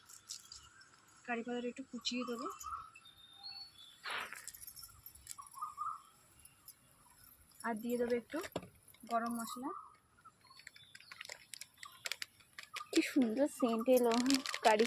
কারি পাতাটা একটু কুচিয়ে দেবো, আর দিয়ে দেবো একটু গরম মশলা। কি সুন্দর সেন্ট এলো কারি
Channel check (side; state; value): both; identical; correlation 1.00